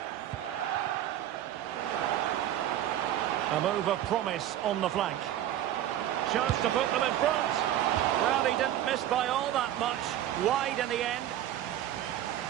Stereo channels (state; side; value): quieter; left; 12.1 dB